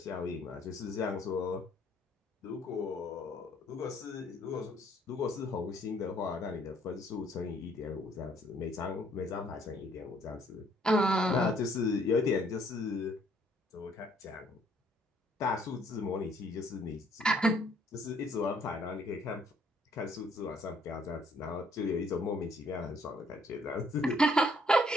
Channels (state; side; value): normal; both; correlation 0.64